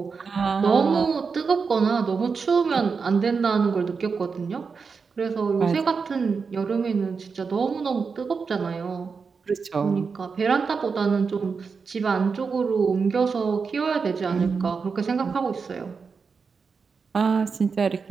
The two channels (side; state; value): left; quieter; 5.2 dB